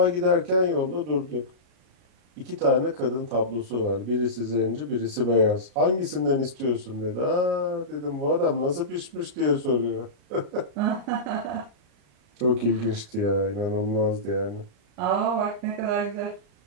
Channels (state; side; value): late; left; 33 ms